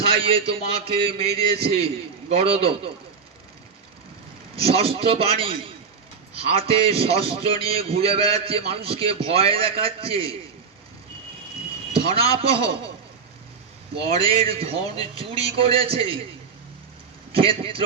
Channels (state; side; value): quieter; left; 5.6 dB